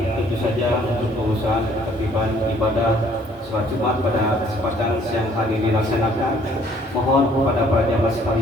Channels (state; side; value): normal; both; correlation 0.60